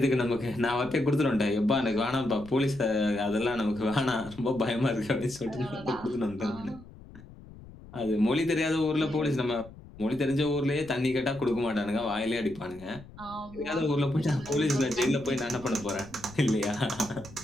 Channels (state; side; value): noise; left; rumble, 19 dB below the sound